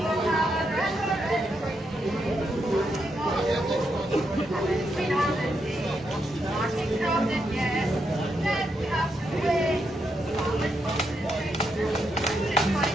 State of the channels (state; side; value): normal; both; correlation 0.81